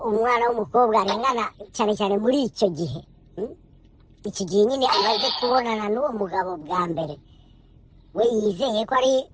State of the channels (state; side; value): identical; both; correlation 1.00